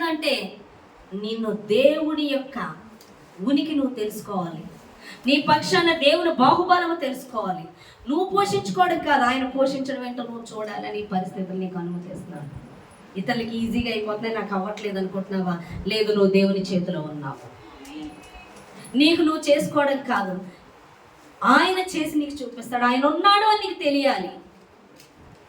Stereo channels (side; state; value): both; identical; correlation 1.00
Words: నిన్ను దేవుడి యొక్క ఉనికి నువ్వు తెలుసుకోవాలి. నీ పక్షాన దేవుని బాహుబలము తెలుసుకోవాలి. నువ్వు పోషించుకోవడం కాదు, ఆయన పోషించడం ఏంటో నువ్వు చూడాలని పరిస్థితులు నీకు అనుమతిస్తున్నాడు. ఇతరులకి ఈజీగా అయిపోతున్నాయి, నాకు అవ్వట్లేదు అనుకుంటున్నావా? లేదు, నువ్వు దేవుని చేతిలో ఉన్నావు. నీకు నువ్వు చేసుకోవడం కాదు, ఆయన చేసి నీకు చూపిస్తాడు. ఆయన ఉన్నాడు అని నీకు తెలియాలి.